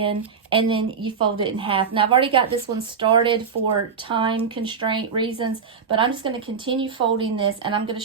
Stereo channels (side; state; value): left; quieter; 6.1 dB